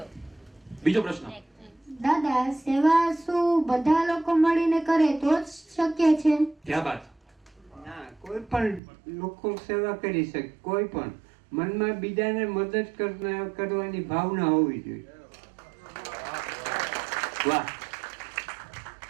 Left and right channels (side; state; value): left; drops out; at 8.8 s